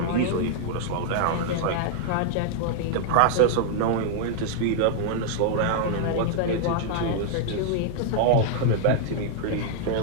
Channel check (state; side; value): different; both; correlation 0.00